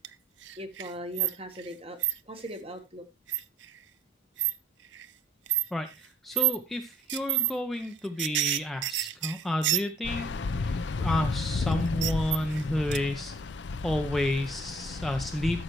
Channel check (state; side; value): normal; both; correlation 0.57